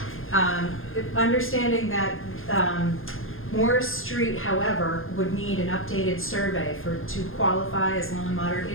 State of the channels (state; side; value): late; right; 0.60 ms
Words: Understanding that Morris Street, however, would need an updated survey to qualify as low and moderate